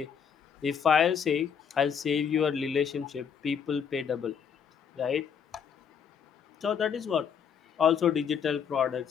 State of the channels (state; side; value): quieter; right; 7.3 dB